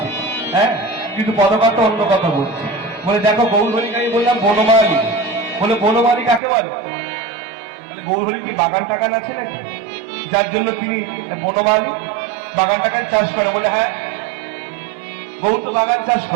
হ্যাঁ কিন্তু পদকর্তা অন্য কথা বলছে বলে দেখো গৌরহরিকে আমি বললাম বনমালী বলে বনমালী কাকে বলে বলে গৌরহরি কি বাগান টাগান আছে নাকি যার জন্য তিনি বনমালী বাগান টাগান চাষ করে বলে হ্যাঁ গৌর তো বাগান চাষ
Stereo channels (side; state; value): left; drops out; at 6.4 s